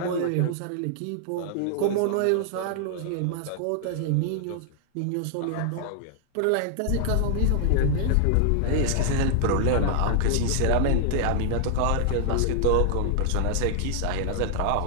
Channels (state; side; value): different; both; correlation -0.01